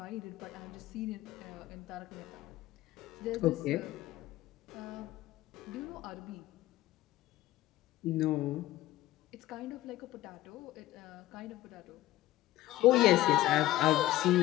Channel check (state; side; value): quieter; right; 15.7 dB